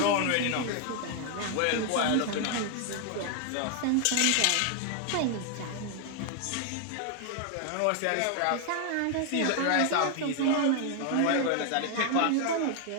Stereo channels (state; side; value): different; both; correlation 0.00